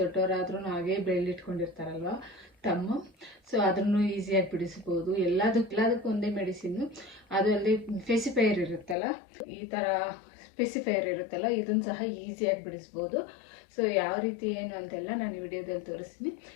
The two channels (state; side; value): drops out; right; at 9.0 s